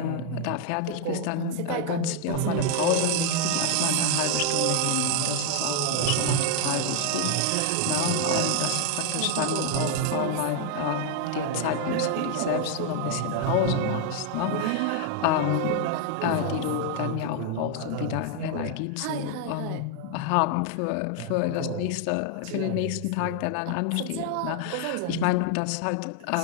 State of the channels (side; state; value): both; different; correlation 0.00